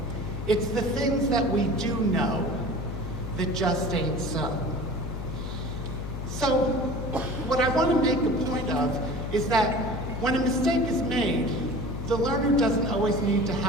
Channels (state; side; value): noise; left; hum, 6 dB below the sound